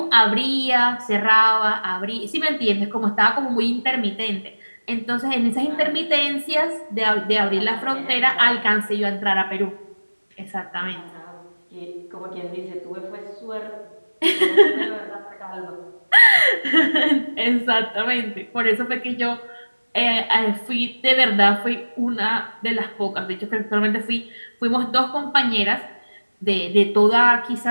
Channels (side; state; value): both; inverted; correlation -1.00